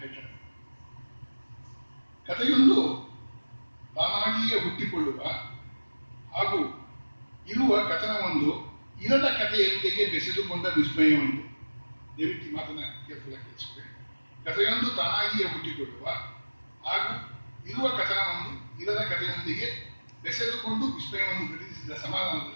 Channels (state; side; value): inverted; both; correlation -1.00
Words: ಕಥೆಯೊಂದು ತಾನಾಗಿಯೇ ಹುಟ್ಟಿಕೊಳ್ಳುವ ಹಾಗೂ ಇರುವ ಕಥನವೊಂದು ಇರದ ಕಥೆಯೊಂದಿಗೆ ಬೆಸೆದುಕೊಂಡ ವಿಸ್ಮಯವೊಂದು. ದಯವಿಟ್ಟು ಮಾತನ್ನ ಕೇರ್ಫುಲ್ ಆಗಿ ಕೇಳಿಸ್ಕೊಳ್ಳಿ. ಕಥೆಯೊಂದು ತಾನಾಗಿಯೇ ಹುಟ್ಟಿಕೊಳ್ಳುವ ಹಾಗೂ ಇರುವ ಕಥನವೊಂದು ಇರದ ಕಥೆಯೊಂದಿಗೆ ಬೆಸೆದುಕೊಂಡು ವಿಸ್ಮಯವನ್ನು ಘಟಿಸಿದ